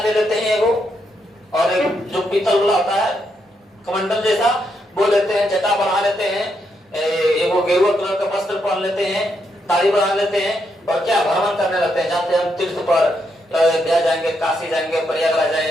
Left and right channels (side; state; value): both; normal; correlation 0.79